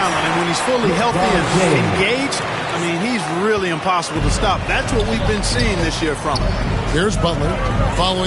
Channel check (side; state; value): both; identical; correlation 1.00